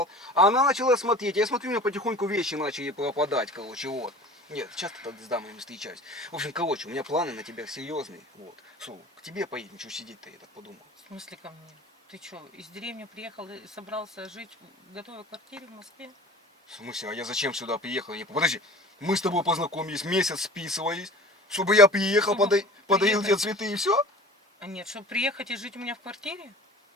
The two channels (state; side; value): normal; both; correlation 0.41